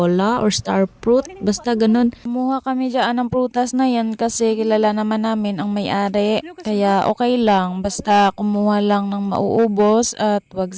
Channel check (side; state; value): both; identical; correlation 1.00